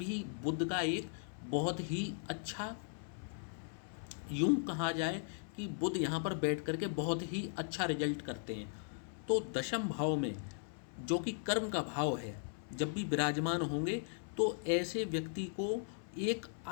बुध का एक बहुत ही अच्छा, यूं कहा जाए कि बुध यहाँ पर बैठ करके बहुत ही अच्छा रिजल्ट करते हैं। तो दशम भाव में जो कि कर्म का भाव है, जब भी विराजमान होंगे तो ऐसे व्यक्ति को एक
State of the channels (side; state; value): right; silent; 52 dB below the other